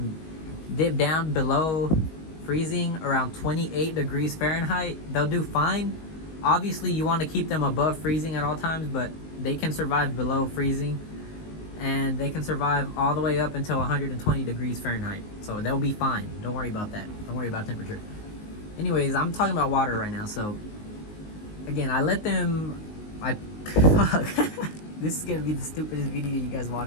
dip down below freezing around 28 degrees Fahrenheit. They'll do fine. Obviously, you want to keep them above freezing at all times, but they can survive below freezing, and they can survive all the way up until 120 degrees Fahrenheit. So they'll be fine. Don't worry about that. Don't worry about temperature. Anyways, I'm talking about water right now. So again, I let them, fuck. This is gonna be the stupidest video you guys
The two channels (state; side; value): late; right; 19 ms